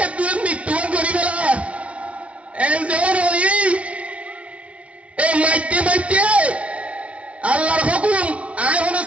একদম মৃত্যুবরণ করি বেলা এন যেমন ওই এই মাইতে মাইতে আল্লাহর হুকুম আয় হলো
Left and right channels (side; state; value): left; late; 0.063 ms